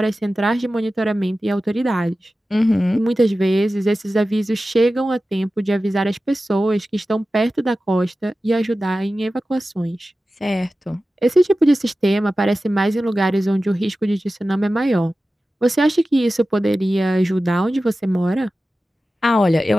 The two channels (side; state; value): both; normal; correlation 0.94